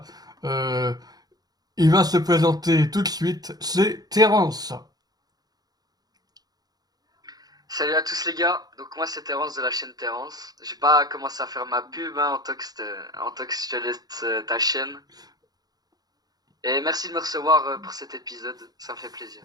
Euh, il va se présenter tout de suite, c'est Terence. Salut à tous les gars, donc moi c'est Terence de la chaîne Terence. J'ai pas commencé à faire ma pub, hein, Antox, je te laisse ta chaîne. Et merci de me recevoir pour cet épisode, ça me fait plaisir.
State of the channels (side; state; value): left; late; 0.19 ms